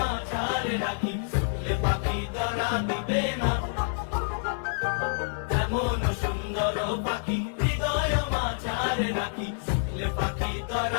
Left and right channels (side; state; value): right; silent; 59 dB below the other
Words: রাখি, শুনলে পাখি ধরা দিবে না। এমন সুন্দর পাখি হৃদয় মাঝারে রাখি, শুনলে পাখি